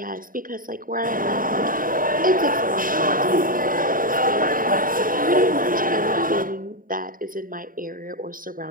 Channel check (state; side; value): late; left; 0.40 ms